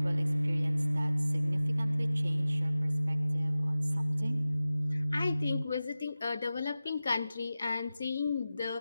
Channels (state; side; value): inverted; both; correlation -0.96